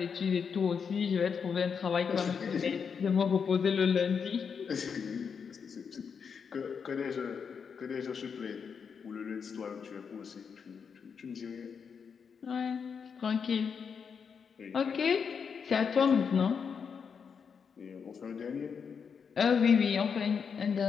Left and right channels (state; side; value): quieter; right; 6.4 dB